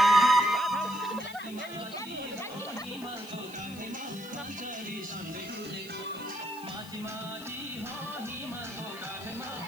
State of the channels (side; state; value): left; noise; hiss, 18 dB below the sound